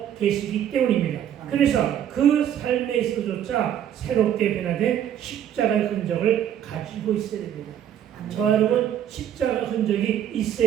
계시기 때문입니다. 그래서 그 삶에서조차 새롭게 변화된 십자가의 흔적을 가지고 있어야 됩니다. 저와 여러분 십자가 흔적이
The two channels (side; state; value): left; quieter; 10.2 dB